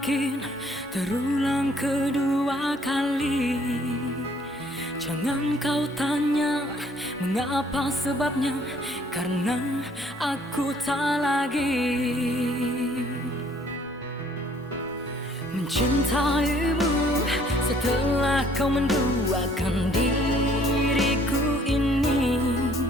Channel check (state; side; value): normal; both; correlation 0.60